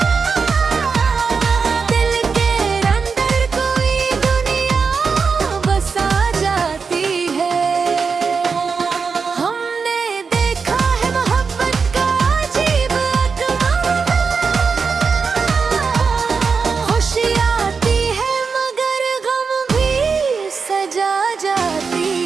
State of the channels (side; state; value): left; quieter; 5.3 dB